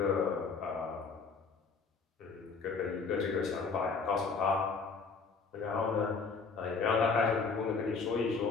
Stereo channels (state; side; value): quieter; right; 4.9 dB